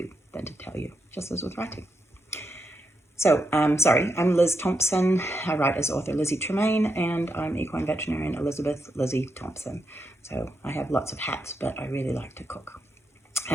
than to tell you, just as with writing. So, I'm Liz Thompson. I write as author Lizzie Tremaine, and I'm equine veterinarian Elizabeth Lizzie Thompson. So I have lots of hats, but I really like to cook.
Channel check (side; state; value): both; normal; correlation 0.83